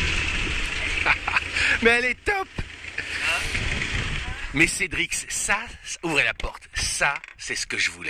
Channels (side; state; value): both; identical; correlation 1.00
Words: Mais elle est top! Mais Cédrix, ça, ouvrez la porte, ça, c'est ce que je